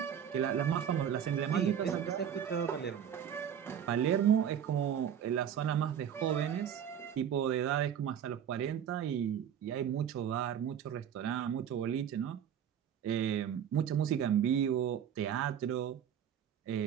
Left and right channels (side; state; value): left; quieter; 9.0 dB